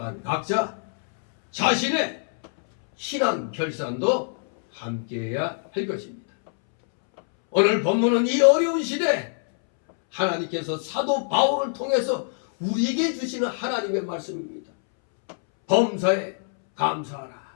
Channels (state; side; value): silent; right; 62 dB below the other